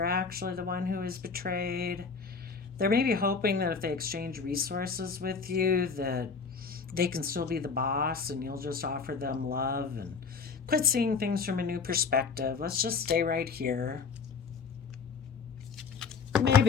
actually the one who was betrayed. They're maybe hoping that if they exchange resources with you, that they can still be the boss and you'll just offer them love and quit seeing things from a new perspective. Let's just stay right here.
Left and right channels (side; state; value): right; quieter; 5.3 dB